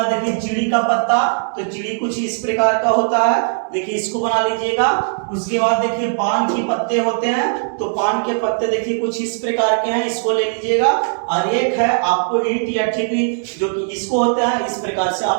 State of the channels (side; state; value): left; silent; 67 dB below the other